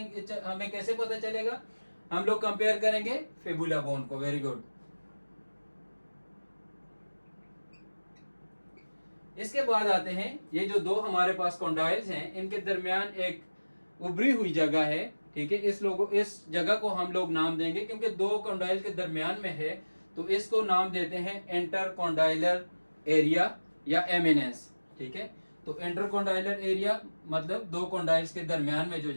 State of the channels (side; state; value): both; inverted; correlation -1.00